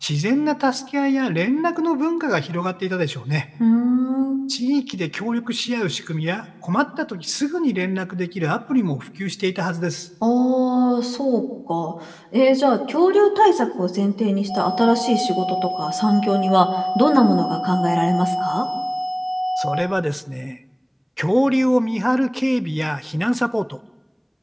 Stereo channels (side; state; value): both; identical; correlation 1.00